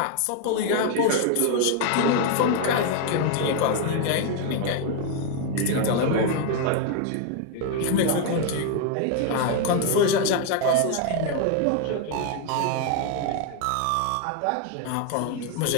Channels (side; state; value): both; different; correlation 0.01